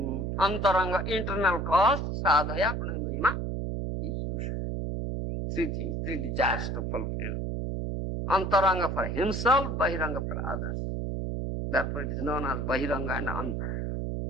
internal cause, Sadhaya Pranayama. Three things, three desires to fulfill. Antaranga for himself, Bahiranga for others. Therefore it is known as Bahiranga and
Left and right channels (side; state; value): right; noise; hum, 2 dB below the sound